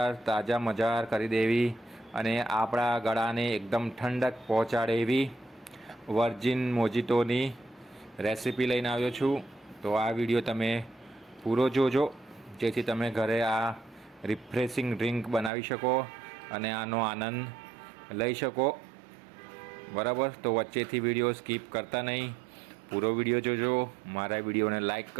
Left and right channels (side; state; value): left; drops out; at 15.5 s